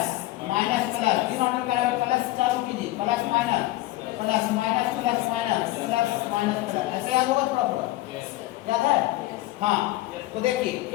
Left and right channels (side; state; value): right; quieter; 17.5 dB